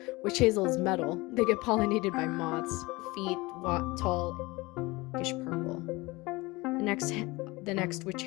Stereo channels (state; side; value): quieter; right; 22.7 dB